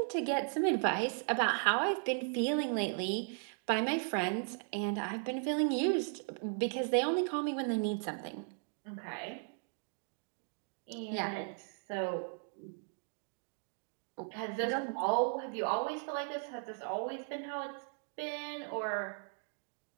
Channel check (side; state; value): left; silent; 53 dB below the other